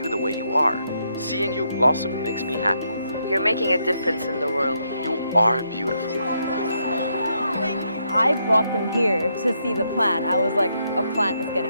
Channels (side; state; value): both; inverted; correlation -0.78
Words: the way you are. Seeing you blossom makes me happy. You're making a difference in the world. You are beautiful. I brought them here to see the plant. I was like, a plant is